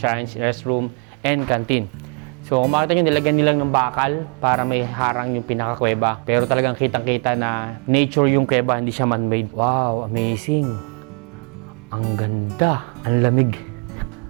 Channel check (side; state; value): left; quieter; 39.8 dB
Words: restroom, and canteen. So kung makita nyo, nilagyan nilang ng bakal para may harang yung pinakakuweba. Pero talagang kitang-kita na nature yung kuweba, hindi siya man-made. Wow, amazing! Ang ganda, ang lamig.